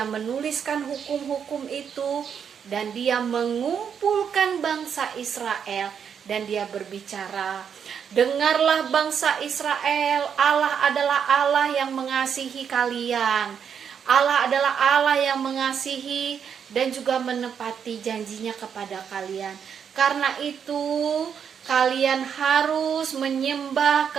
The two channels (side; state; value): left; quieter; 7.5 dB